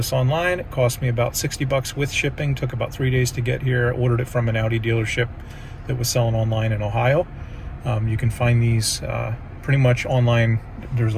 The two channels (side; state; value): both; identical; correlation 1.00